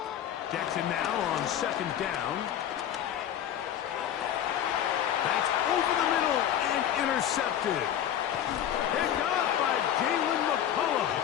Jackson now on second down. That's over the middle and intercepted. Picked off by Jalen McCullough.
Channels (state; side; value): quieter; right; 10.4 dB